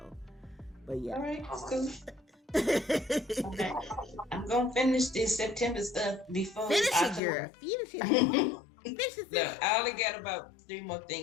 but yeah. All right, that's cool. Okay. I'm gonna finish this September stuff before Finish it, girl. Finish it. No, I only got about 3 more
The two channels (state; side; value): drops out; right; at 7.2 s